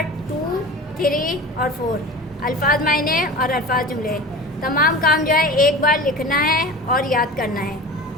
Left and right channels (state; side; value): normal; both; correlation 0.34